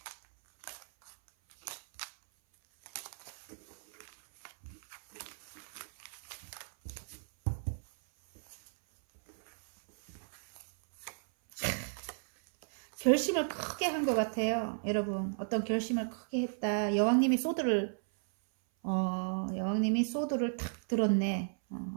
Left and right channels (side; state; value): left; silent; 55 dB below the other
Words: 결심을 크게 한 것 같아요, 여러분. 어떤 결심을 크게 했다. 여왕님이 소드를 탁 들었네.